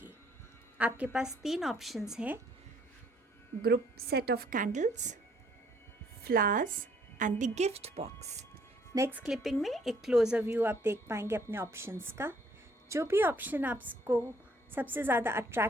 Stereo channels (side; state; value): both; normal; correlation 0.64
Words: आपके पास 3 ऑप्शंस हैं: group set of candles, flowers and the gift box. Next clipping में एक क्लोजर व्यू आप देख पाएंगे अपने ऑप्शंस का। जो भी ऑप्शन आपको सबसे ज़्यादा